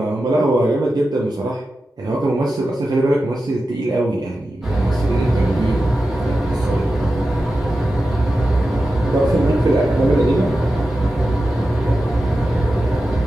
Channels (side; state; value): both; normal; correlation 0.92